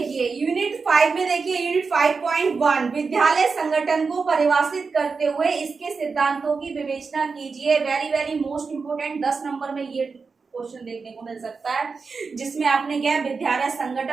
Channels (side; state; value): left; quieter; 4.8 dB